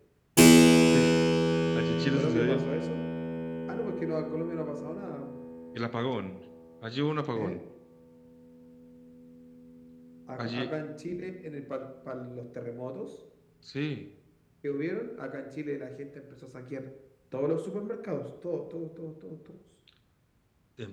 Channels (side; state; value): both; identical; correlation 1.00